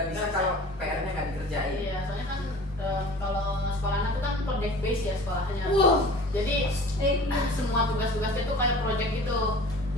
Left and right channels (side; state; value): both; normal; correlation 0.43